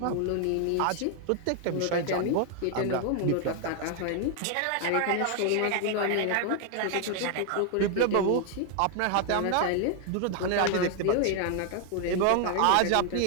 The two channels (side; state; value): both; different; correlation 0.00